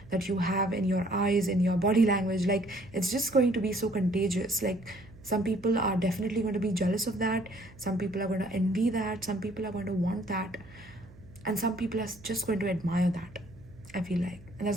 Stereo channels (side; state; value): right; noise; hum, 22 dB below the sound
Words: that you have in your eyes, in your body language, like it's just going to be so contagious. Like some people are definitely going to be jealous of that. Some people are going to envy that. Some people are going to want that. And some people are just going to admire that, I feel like. And that's